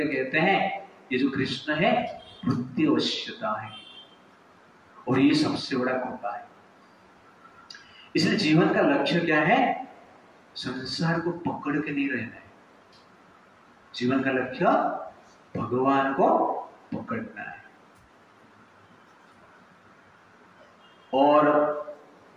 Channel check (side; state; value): both; identical; correlation 1.00